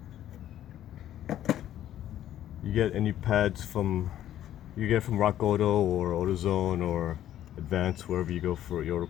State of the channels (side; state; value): right; quieter; 11.9 dB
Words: You get any pads from Rock Auto or AutoZone or Advance, wherever you go for your